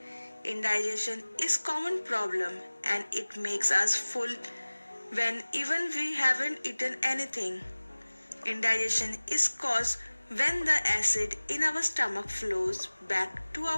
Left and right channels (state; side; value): inverted; both; correlation -1.00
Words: Indigestion is common problem and it makes us full when even we haven't eaten anything. Indigestion is caused when the acid in our stomach flows back to